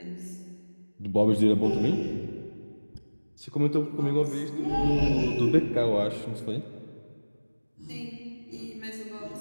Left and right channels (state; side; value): inverted; both; correlation -1.00